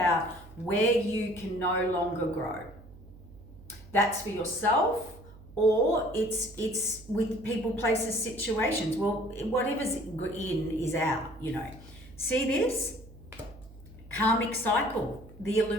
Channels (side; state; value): right; noise; hum, 20 dB below the sound